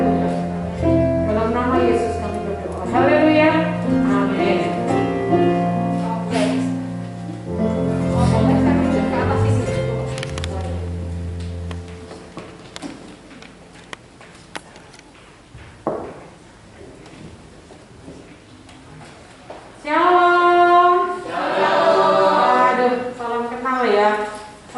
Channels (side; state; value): both; identical; correlation 1.00